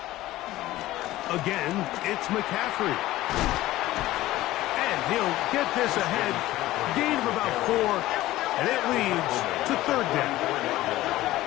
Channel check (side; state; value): right; quieter; 16.3 dB